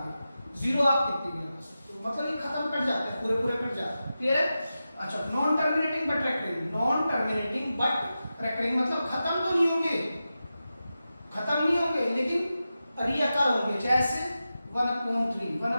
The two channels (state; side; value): inverted; both; correlation -0.92